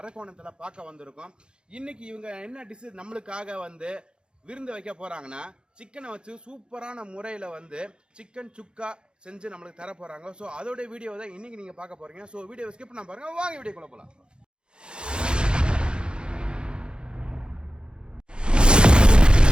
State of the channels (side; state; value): left; late; 0.051 ms